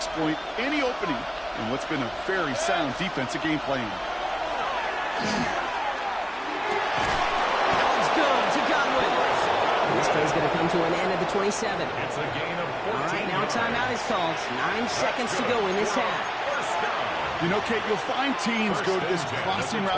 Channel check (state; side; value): identical; both; correlation 1.00